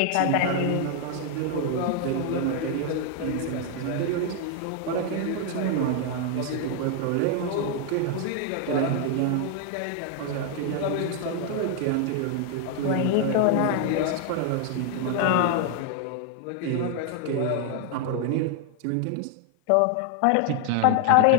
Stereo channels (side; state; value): both; different; correlation 0.00